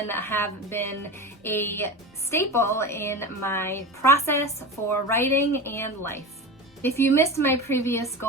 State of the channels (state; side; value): normal; both; correlation 0.27